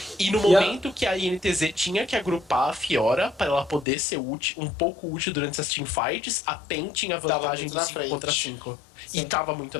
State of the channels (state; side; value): drops out; right; at 3.9 s